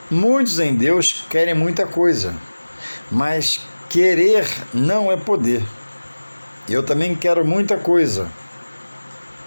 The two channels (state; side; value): inverted; both; correlation -1.00